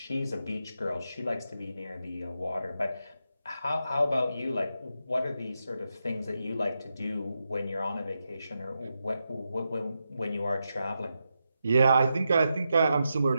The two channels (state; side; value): inverted; both; correlation -0.87